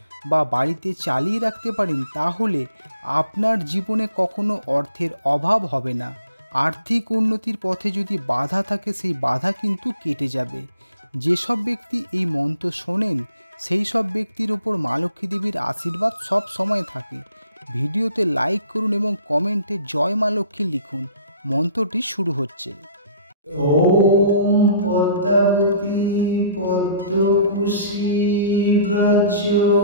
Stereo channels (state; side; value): inverted; both; correlation -0.55